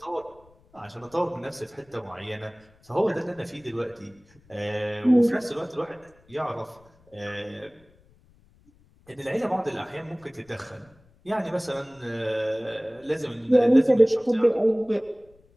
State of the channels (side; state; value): left; noise; rumble, 30 dB below the sound